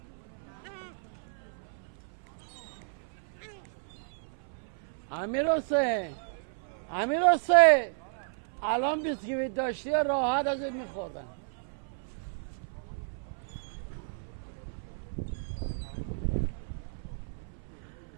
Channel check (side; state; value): left; silent; 56 dB below the other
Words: امیر حسین الان بیسکویت داشتی راحت ازت میخوردن.